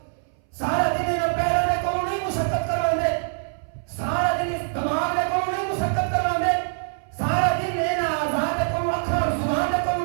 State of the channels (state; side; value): silent; left; 60 dB below the other